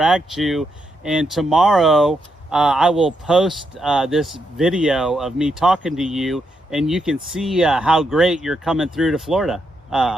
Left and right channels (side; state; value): both; normal; correlation 0.80